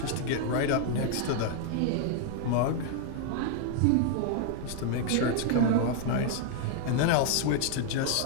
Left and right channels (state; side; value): different; both; correlation 0.00